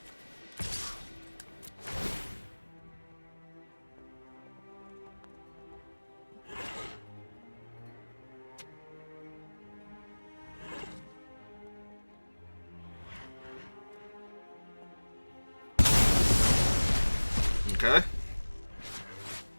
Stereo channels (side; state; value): both; inverted; correlation -1.00